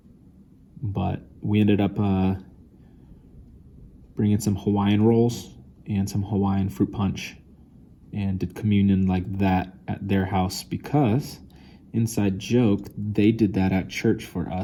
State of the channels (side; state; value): both; identical; correlation 1.00